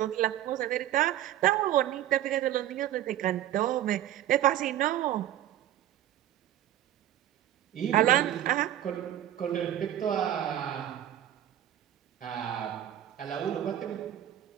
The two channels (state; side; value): quieter; left; 12.3 dB